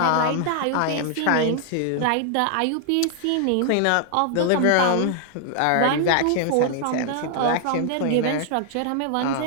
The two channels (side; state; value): both; different; correlation 0.00